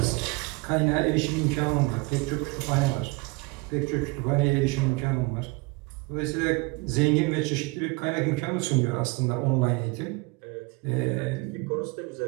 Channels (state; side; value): quieter; left; 26.3 dB